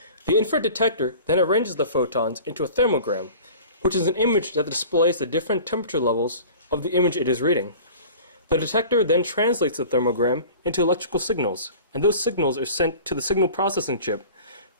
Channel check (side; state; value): both; inverted; correlation -0.41